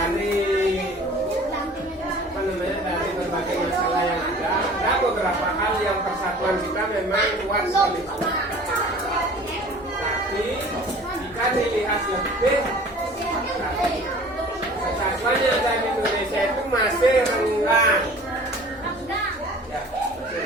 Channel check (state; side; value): normal; both; correlation 0.46